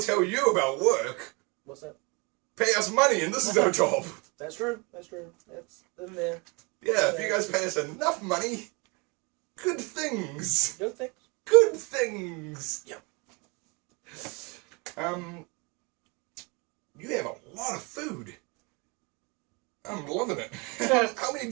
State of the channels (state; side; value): quieter; left; 29.4 dB